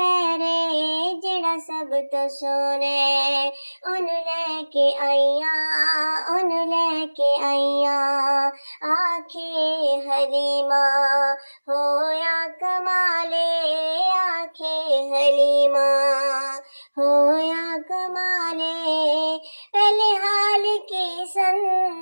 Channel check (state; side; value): inverted; both; correlation -1.00